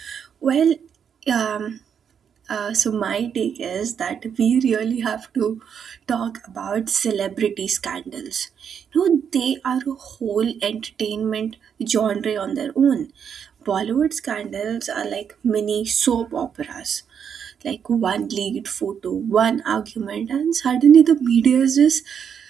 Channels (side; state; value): left; quieter; 7.6 dB